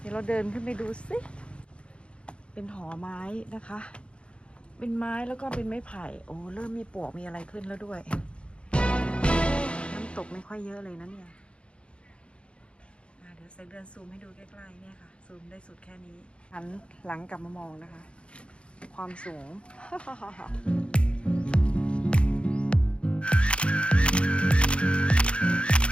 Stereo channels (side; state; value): right; late; 0.058 ms